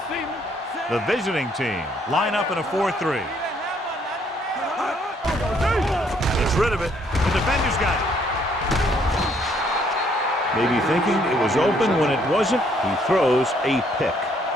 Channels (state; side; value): normal; both; correlation 0.67